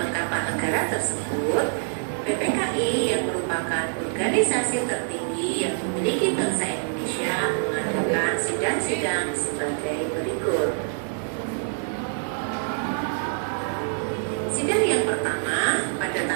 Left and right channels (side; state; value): left; silent; digital silence